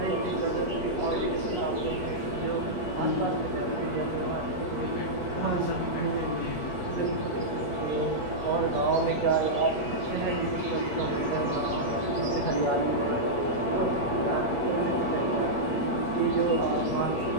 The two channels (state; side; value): late; right; 8.4 ms